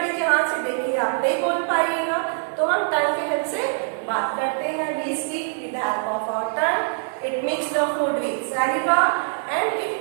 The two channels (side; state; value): left; silent; 59 dB below the other